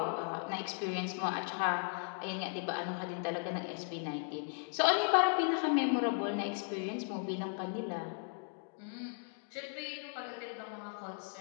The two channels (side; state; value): right; silent; 53 dB below the other